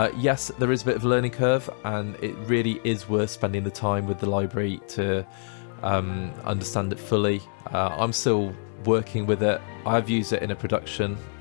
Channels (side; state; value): right; silent; digital silence